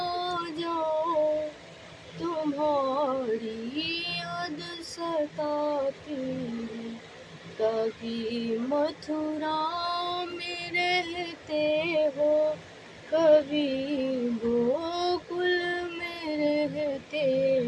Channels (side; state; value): both; identical; correlation 1.00